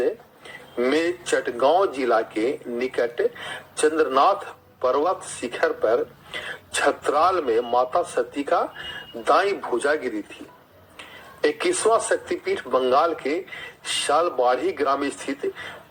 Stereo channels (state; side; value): identical; both; correlation 1.00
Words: में चटगांव जिला के निकट चंद्रनाथ पर्वत शिखर पर छतराल में माता सती का दाई भुजा गिरी थी। 21वां शक्तिपीठ बंगाल के शालबाड़ी ग्राम स्थित